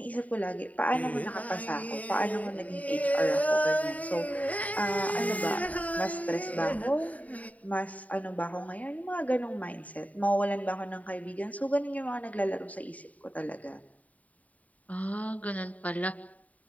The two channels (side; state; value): right; late; 0.071 ms